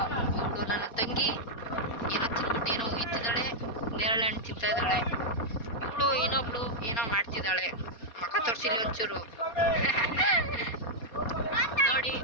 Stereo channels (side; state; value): right; late; 4.2 ms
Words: ನನ್ನ ತಂಗಿ ಏನೋ ಇತ್ತಿದ್ದಾಳೆ, ನೇರಳೆ ಹಣ್ಣು ತಿಂತಾ ಇದ್ದಾಳೆ. ಇವಳು ಇನ್ನೊಬ್ಳು ಏನೋ ಮಾಡ್ತಿದ್ದಾಳೆ. ಮಕ್ಕ ತೋರಿಸಿಲಿ ಒಂಚೂರು. ನೋಡಿ